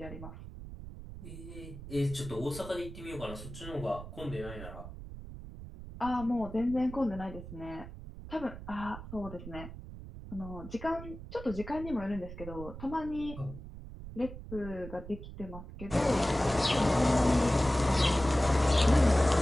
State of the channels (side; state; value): right; noise; rumble, 12 dB below the sound